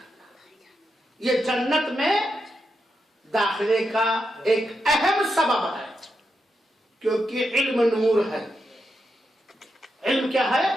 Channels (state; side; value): normal; both; correlation 0.85